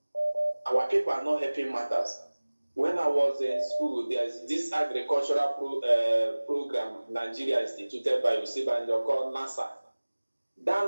Our people are not helping matters. When I was in school, there's this agricultural program Nigeria instituted by Osibanjo called NASA.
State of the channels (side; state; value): both; inverted; correlation -1.00